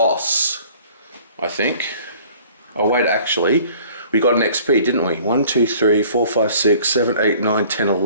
I think. Oh wait, actually, we got an XP, didn't we? 1, 2, 3, 4, 5, 6, 7, 8, 9, 10,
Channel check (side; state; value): both; inverted; correlation -0.52